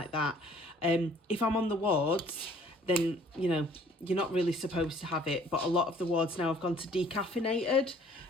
that. If I'm on the wards, then, you know, you're not really supposed to have it. But a lot of the wards now have gone to decaffeinated,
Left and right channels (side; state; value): both; normal; correlation 0.56